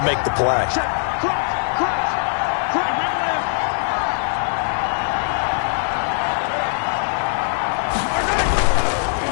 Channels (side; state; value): right; silent; 65 dB below the other